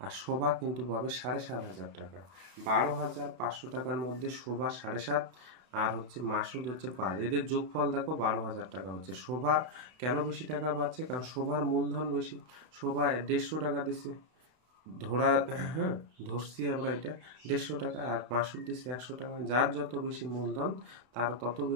আর শোভা কিন্তু পাবে 7,500 টাকা। 12,500 টাকার মধ্যে শোভা 7.5, আর হচ্ছে মাসুদ হচ্ছে 5, এদের যোগফল দেখো 12,000 টাকা হচ্ছে। শোভা কেন বেশি টাকা পাচ্ছে? কারণ শোভার মূলধন বেশি। শোভা 150 টাকা দিছে, হ্যাঁ ধরছি আমরা এটা 150 টাকা, আর মাসুদ দিচ্ছে 100 টাকা। যার যত বেশি মূলধন তার তত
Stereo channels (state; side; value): late; left; 32 ms